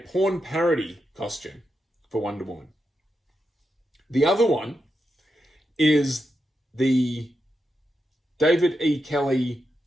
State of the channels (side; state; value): both; normal; correlation 0.86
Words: parody costume for Wonder Woman. The other one is the David E. Kelly